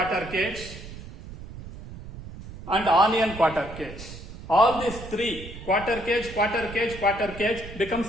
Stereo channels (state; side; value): noise; right; rumble, 13 dB below the sound